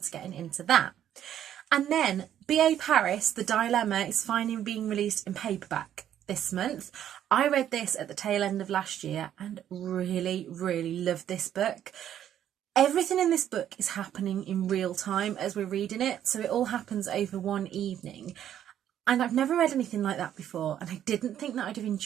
to getting into that. And then B.A. Paris, The Dilemma, is finally being released in paperback this month. I read this at the tail end of last year and really, really loved this book. Everything in this book is happening in real time as we're reading it, so it all happens over one evening. And I've never read anything like that before, and I didn't think that I'd have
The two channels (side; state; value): left; quieter; 10.6 dB